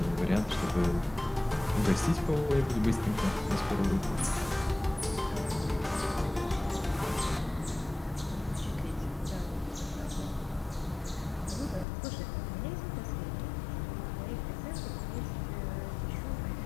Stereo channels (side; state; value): right; drops out; at 11.9 s